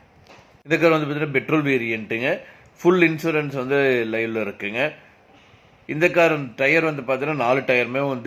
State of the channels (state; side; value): identical; both; correlation 1.00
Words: இந்த கார் வந்து பார்த்தீங்கன்னா பெட்ரோல் வேரியண்ட்டுங்க. ஃபுல் இன்சூரன்ஸ் வந்து லைவ்ல இருக்குங்க. இந்த கார் டயர் வந்து பார்த்தீங்கன்னா 4 டயருமே